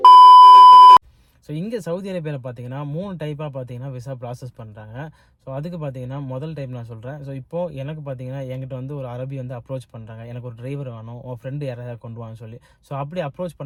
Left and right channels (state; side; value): identical; both; correlation 1.00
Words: ஸோ இங்கே சவுதி அரேபியாவில் பார்த்தீங்கன்னா 3 டைப்பாக பார்த்தீங்கன்னா விசா ப்ராசஸ் பண்ணுறாங்க. ஸோ அதுக்கு பார்த்தீங்கன்னா முதல் டைப் நான் சொல்கிறேன். ஸோ இப்போது எனக்கு பார்த்தீங்கன்னா என்கிட்ட வந்து ஒரு அரபி வந்து அப்ரோச் பண்ணுறாங்க. எனக்கு ஒரு டிரைவர் வேணும், உன் ஃப்ரெண்டு யாராவது கொண்டு வான்னு சொல்லி. ஸோ அப்படி அப்ரோச்